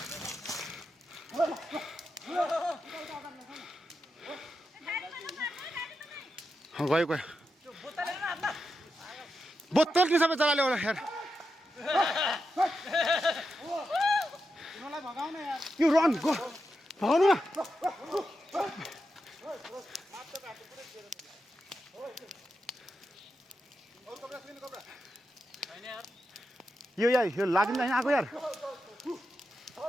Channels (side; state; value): both; normal; correlation 0.87